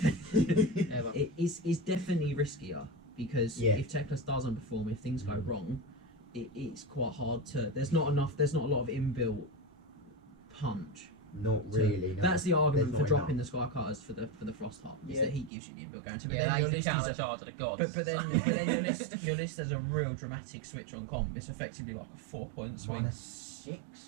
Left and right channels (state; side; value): drops out; left; at 15.5 s